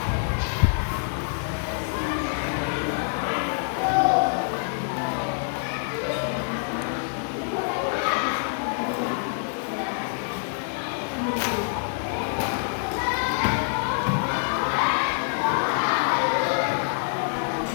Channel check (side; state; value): right; silent; 61 dB below the other